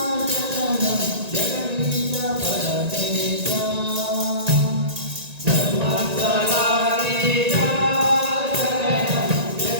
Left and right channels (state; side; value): late; left; 1.9 ms